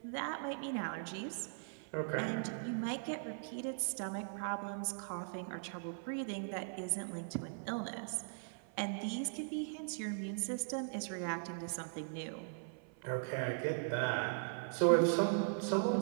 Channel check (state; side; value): silent; left; 51 dB below the other